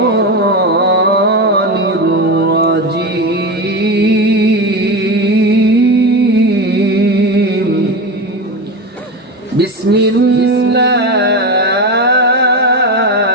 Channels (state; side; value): normal; both; correlation 0.20